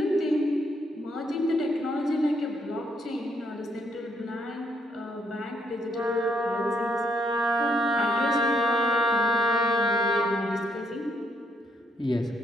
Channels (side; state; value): both; normal; correlation 0.73